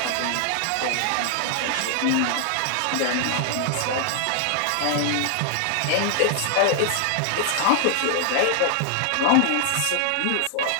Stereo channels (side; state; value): both; different; correlation 0.00